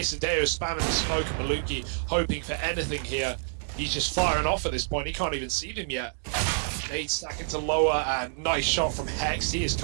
spamming the smoke, and Maluki hoping for anything here. He's just firing off at this point. He can't even see them yet. Nade stacking to lower, and nice shot from Hex. He has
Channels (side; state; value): left; silent; digital silence